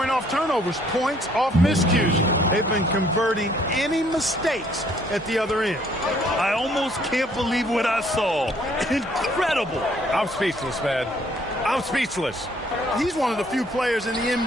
off turnovers, points off miscues. They've been converting any mistakes at the other end. I almost can't believe what I saw. Incredible. I'm speechless, man. I'm speechless. He's one of the few players in the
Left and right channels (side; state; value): both; normal; correlation 0.63